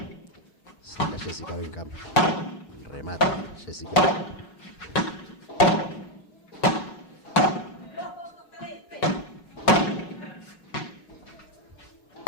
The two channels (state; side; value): late; right; 5.4 ms